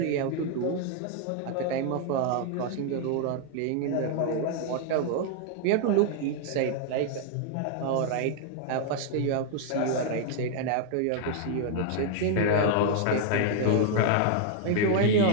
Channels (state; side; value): different; both; correlation 0.00